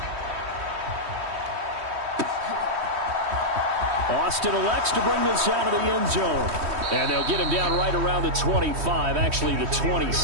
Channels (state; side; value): late; left; 3.1 ms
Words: Austin elects to bring this out of the end zone. And they'll get him down right around the 25, actually the